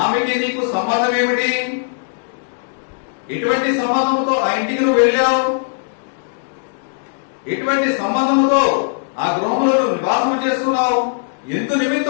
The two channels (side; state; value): right; silent; digital silence